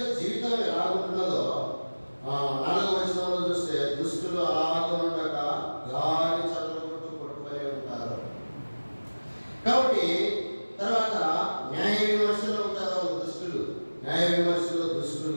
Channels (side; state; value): both; inverted; correlation -1.00